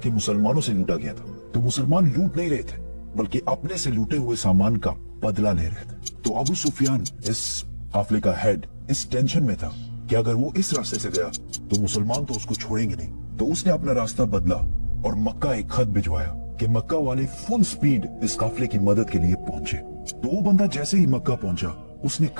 मुसलमानों से लूटा गया था। तो मुसलमान लूट नहीं रहे थे बल्कि अपने से लूटे हुए सामान का बदला ले रहे थे। तो अबू सुफियान, इस काफिले का हेड, इस टेंशन में था कि अगर वो इस रास्ते से गया तो मुसलमान तो उसको छोड़ेंगे नहीं। तो उसने अपना रास्ता बदला और मक्का एक खत भिजवाया कि मक्का वाले फुल स्पीड इस काफिले की मदद के लिए पहुंचे। तो वो बंदा जैसे ही मक्का पहुंचा उसने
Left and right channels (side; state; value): both; inverted; correlation -1.00